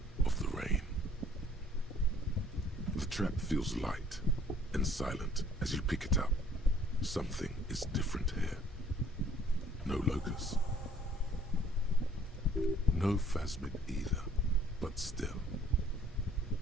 of the rain. The trap feels light and silent as you pick it up. Something is different here. No locust. No phasmid either, but still.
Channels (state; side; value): normal; both; correlation 0.58